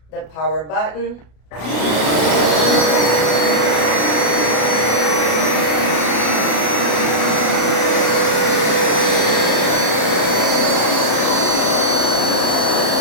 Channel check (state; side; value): late; right; 33 ms